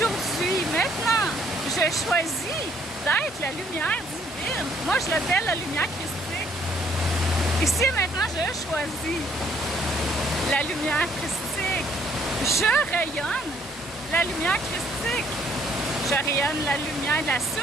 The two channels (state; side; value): normal; both; correlation 0.64